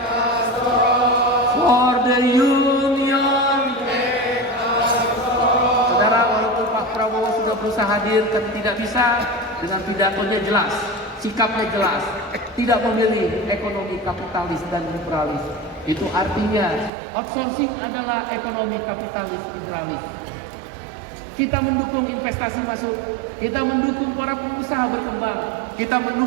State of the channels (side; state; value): left; drops out; at 16.9 s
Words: for the union. Saudara, walaupun Pak Prabowo sudah berusaha hadir, kan tidak bisa. Dengan pidatonya jelas, sikapnya jelas, tidak memilih ekonomi kapitalis dan liberalis. Itu artinya outsourcing adalah ekonomi kapitalis liberalis. Kita mendukung investasi masuk, kita mendukung para pengusaha berkembang, kita